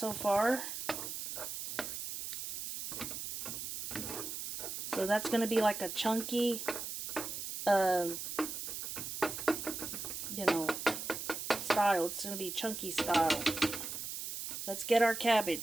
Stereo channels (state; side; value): noise; right; hiss, 5 dB below the sound